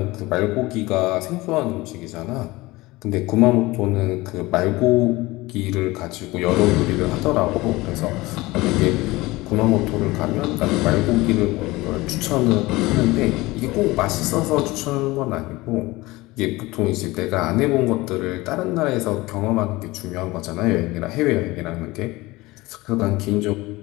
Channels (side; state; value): right; quieter; 20.6 dB